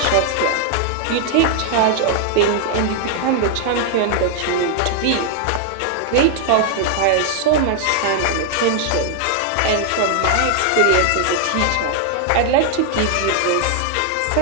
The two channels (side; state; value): both; different; correlation 0.00